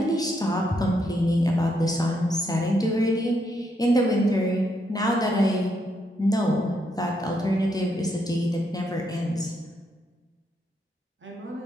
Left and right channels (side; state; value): both; normal; correlation 0.77